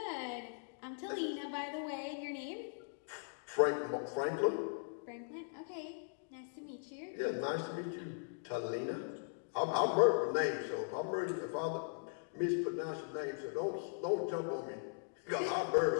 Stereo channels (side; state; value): right; silent; digital silence